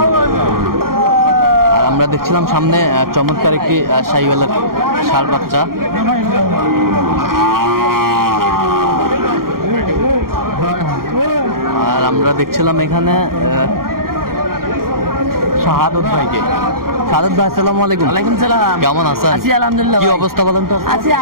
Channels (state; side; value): late; left; 0.92 ms